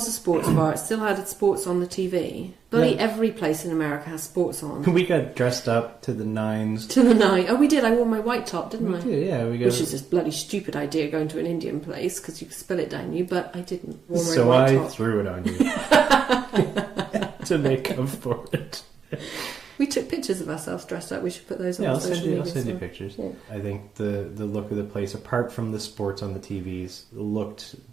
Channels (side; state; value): left; quieter; 6.7 dB